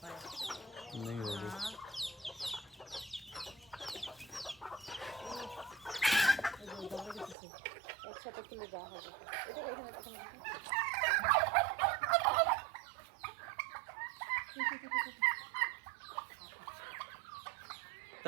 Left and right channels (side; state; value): left; drops out; at 7.4 s